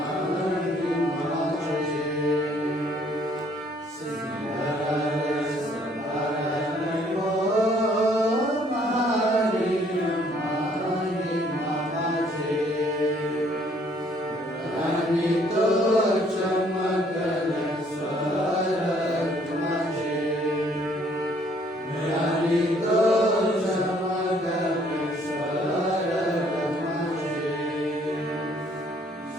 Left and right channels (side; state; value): both; normal; correlation 0.63